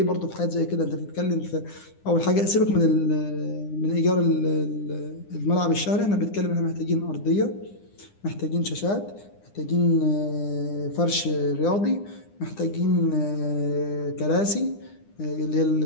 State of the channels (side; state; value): right; late; 9.9 ms